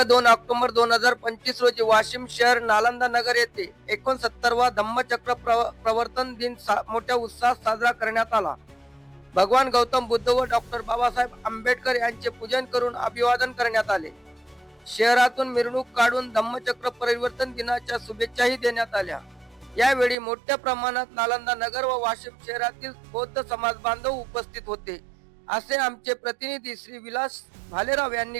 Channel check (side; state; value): left; drops out; at 20.2 s